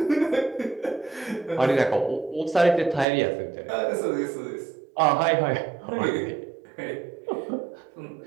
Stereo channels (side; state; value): left; drops out; at 3.1 s